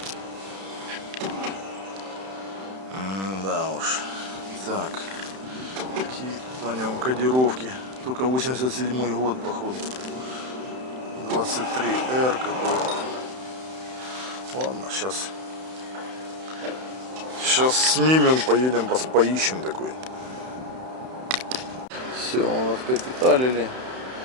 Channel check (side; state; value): left; late; 31 ms